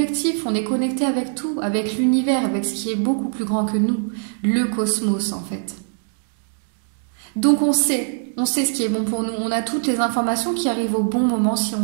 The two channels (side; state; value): left; silent; digital silence